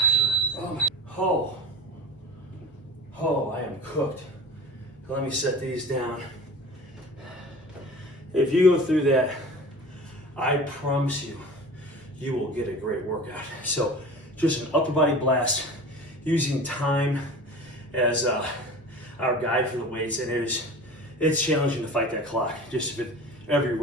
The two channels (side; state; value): both; normal; correlation 0.37